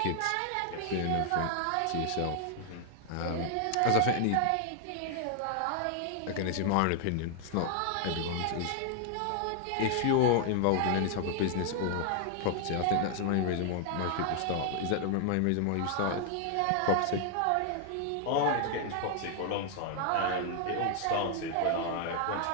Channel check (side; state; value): both; different; correlation 0.00